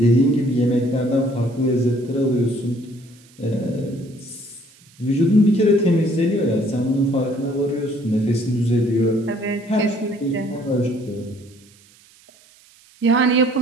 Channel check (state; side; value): noise; right; hiss, 28 dB below the sound